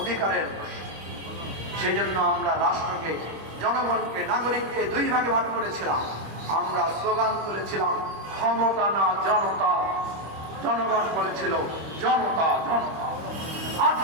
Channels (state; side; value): late; left; 25 ms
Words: সেই জন্য আমরা রাষ্ট্রকে, জনগণকে, নাগরিককে দুই ভাগে ভাগ করেছিলাম। আমরা স্লোগান তুলেছিলাম ক্ষমতা না জনতা, জনগণ বলেছিল জনতা জনতা।